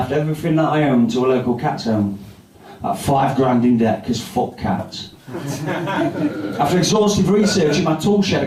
everything that I owned to a local cat's home. At $5 in debt, because fuck cats. After exhaustive research in my tool shed, I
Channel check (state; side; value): identical; both; correlation 1.00